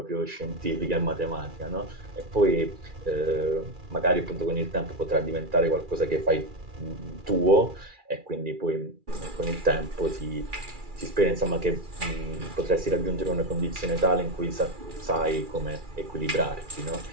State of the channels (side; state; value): left; late; 2.4 ms